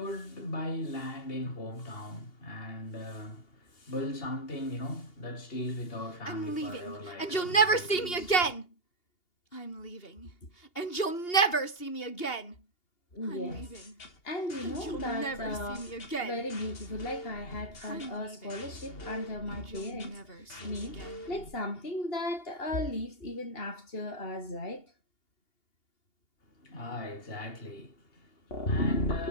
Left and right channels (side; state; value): right; late; 2.8 ms